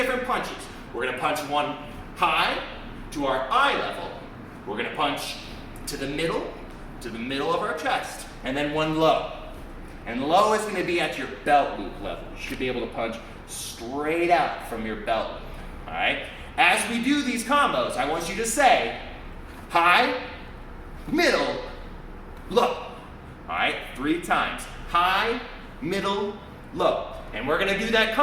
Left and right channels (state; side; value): identical; both; correlation 1.00